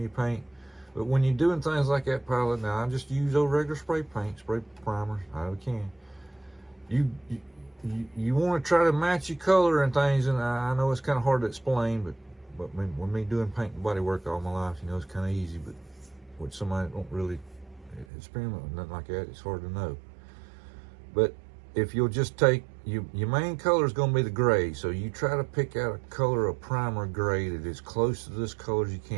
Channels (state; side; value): drops out; left; at 18.1 s